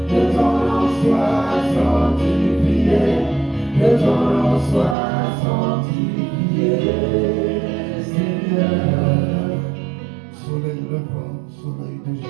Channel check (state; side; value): drops out; left; at 5.0 s